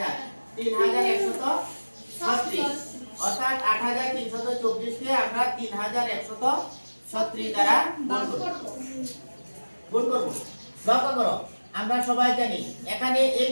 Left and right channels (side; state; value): both; inverted; correlation -1.00